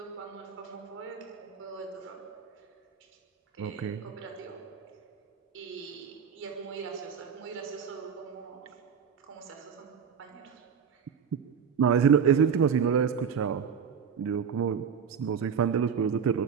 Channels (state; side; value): quieter; left; 7.1 dB